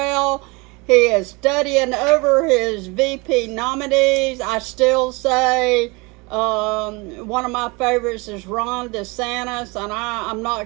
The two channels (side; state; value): left; quieter; 27.0 dB